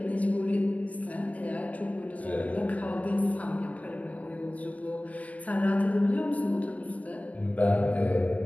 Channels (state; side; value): late; right; 0.069 ms